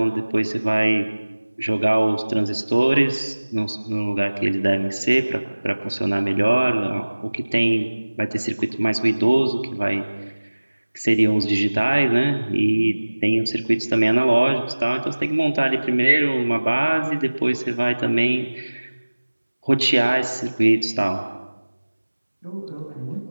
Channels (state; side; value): inverted; both; correlation -1.00